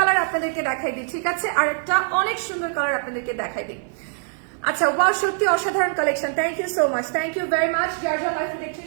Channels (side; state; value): left; silent; digital silence